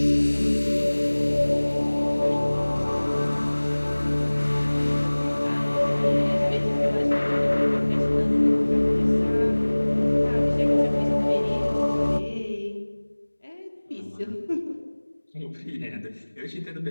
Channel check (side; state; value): both; inverted; correlation -1.00